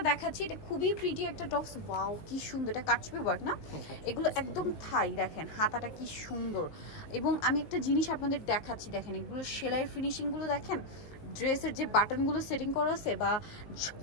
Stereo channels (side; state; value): right; late; 19 ms